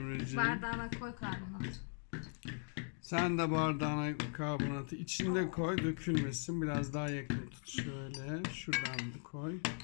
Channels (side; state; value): right; silent; 51 dB below the other